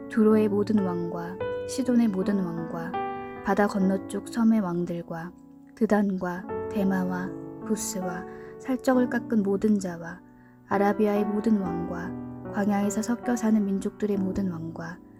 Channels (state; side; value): identical; both; correlation 1.00